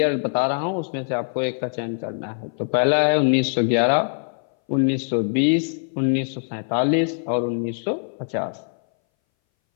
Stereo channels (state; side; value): silent; right; 61 dB below the other